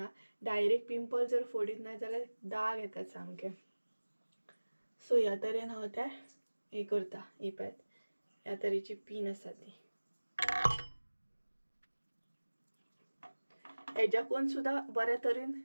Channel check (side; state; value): both; inverted; correlation -1.00